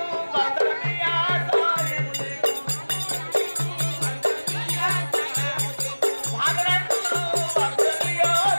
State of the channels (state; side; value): inverted; both; correlation -1.00